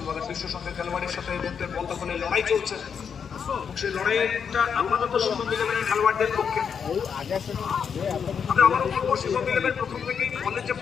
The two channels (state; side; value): quieter; right; 6.9 dB